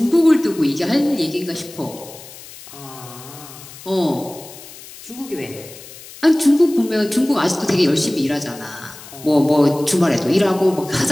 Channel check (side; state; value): left; noise; hiss, 17 dB below the sound